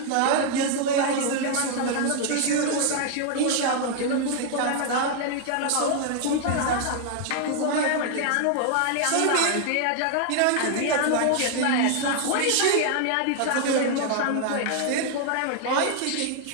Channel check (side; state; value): both; different; correlation 0.00